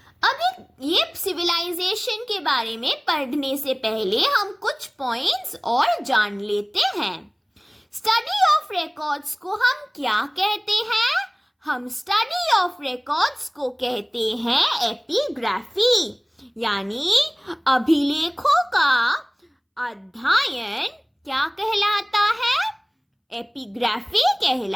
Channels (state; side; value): identical; both; correlation 1.00